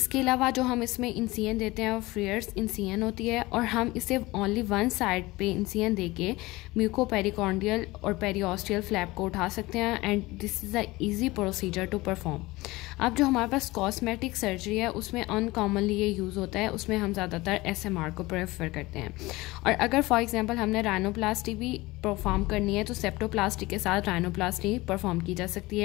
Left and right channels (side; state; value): right; quieter; 20.5 dB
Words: अलावा जो हम इसमें इंसियन देते हैं वो फ्रीयर्स इंसियन होती है, और हम इसे ओनली वन साइड पे इंसियन देके म्यूकोपेरिकॉन्डियल और पेरियोस्टियल फ्लैप को उठा सकते हैं, and this is a easy procedure to perform. अब जो हमारे पास कॉस्मेटिक सर्जरी है उसमें अनकॉमनली ये यूज़ होता है, उसमें हम ज़्यादातर SMR को प्रेफर करते हैं. और अगर फॉर एग्जांपल हमने राइनोप्लास्टी भी परफॉर्म करनी है तो सेप्टोप्लास्टी के साथ राइनोप्लास्टी परफॉर्म की जा सकती